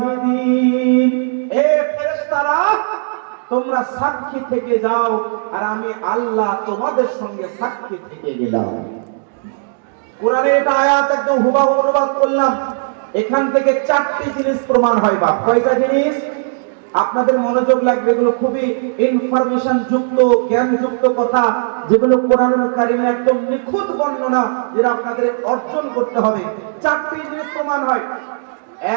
এ ফেরেশতারা তোমরা সাক্ষী থেকে যাও আর আমি আল্লাহ তোমাদের সঙ্গে সাক্ষী থেকে গেলাম। কোরআনের এটা আয়াত একদম হুবহু অনুবাদ করলাম। এখান থেকে চারটি জিনিস প্রমাণ হয়। বা কয়টা জিনিস? আপনাদের মনোযোগ লাগবে, এগুলো খুবই ইনফরমেশন যুক্ত, জ্ঞান যুক্ত কথা, যেগুলো কোরআনুল কারীমে একদম নিখুঁত বর্ণনা, যেটা আপনাদের অর্জন করতে হবে। চারটি জিনিস প্রমাণ হয়।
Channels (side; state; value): left; silent; digital silence